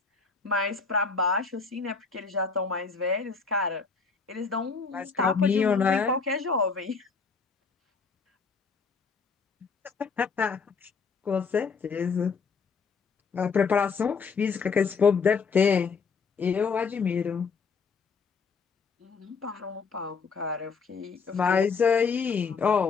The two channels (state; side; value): quieter; right; 5.1 dB